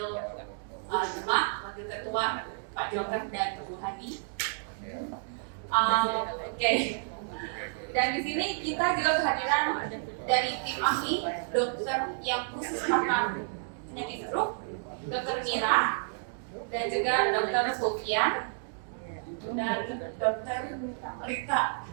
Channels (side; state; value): left; silent; digital silence